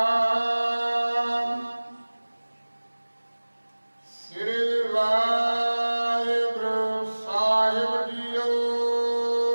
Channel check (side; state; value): both; inverted; correlation -1.00